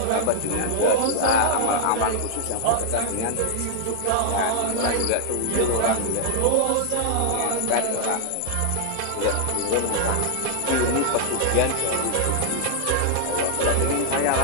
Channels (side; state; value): both; different; correlation -0.01